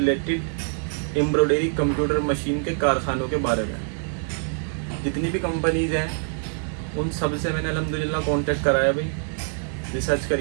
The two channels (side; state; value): left; silent; 56 dB below the other